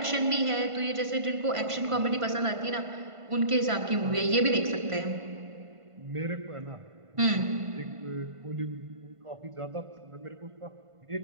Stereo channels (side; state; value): left; late; 1.5 ms